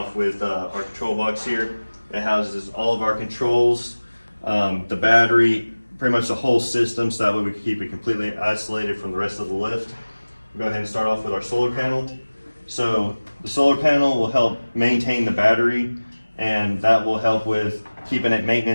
with our control box here. It houses all of our controls, the battery, pretty much the whole system, so that way we can keep it completely isolated from the rest of the lift. We'll go ahead and start off with our solar panel. So the solar panel will help maintain the battery, and that will help with keeping it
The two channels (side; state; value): both; inverted; correlation -1.00